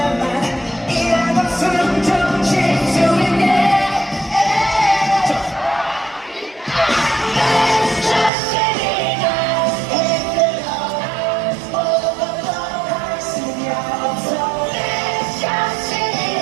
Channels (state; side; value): drops out; left; at 8.3 s